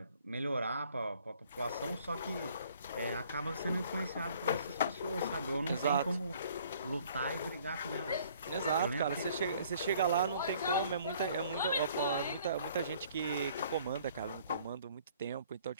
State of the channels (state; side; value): inverted; both; correlation -0.58